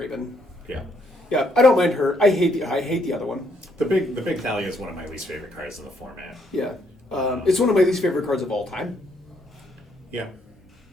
Yeah. Yeah, I don't mind her. I hate the other one. The big Thalia is one of my least favorite cards in the format. Yeah, it's one of my least favorite cards of all time. Yeah,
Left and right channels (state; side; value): normal; both; correlation 0.72